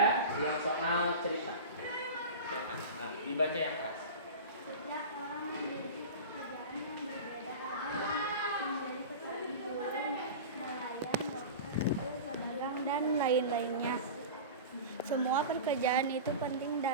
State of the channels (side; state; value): both; inverted; correlation -0.30